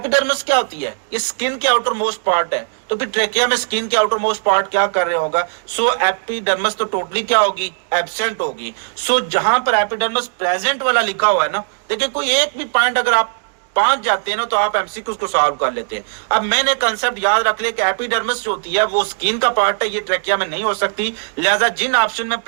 क्या होती है, ये स्किन के आउटर मोस्ट पार्ट है। तो फिर ट्रैकिया में स्किन के आउटर मोस्ट पार्ट क्या कर रहे होगा, सो एपिडर्मस तो टोटली क्या होगी, एब्सेंट होगी। सो जहां पर एपिडर्मस प्रेजेंट वाला लिखा हुआ है ना, देखिए कोई एक भी पॉइंट अगर आप पहुंच जाते हैं ना तो आप एमसीक्यू को सॉल्व कर लेते हैं। अब मैंने कंसेप्ट याद रख लिया कि एपिडर्मिस जो होती है वो स्किन का पार्ट है, ये ट्रैकिया में नहीं हो सकती। लिहाजा जिन ऑप्शन में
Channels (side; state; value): left; silent; digital silence